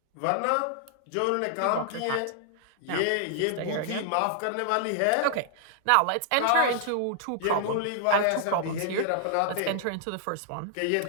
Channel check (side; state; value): both; different; correlation -0.01